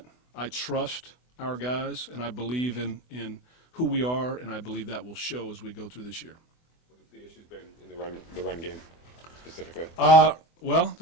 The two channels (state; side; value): late; right; 24 ms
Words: I trust our guys, and I believe in who we are, and I believe that will show as we go through this year. What have the issues been in the run game specifically? Well,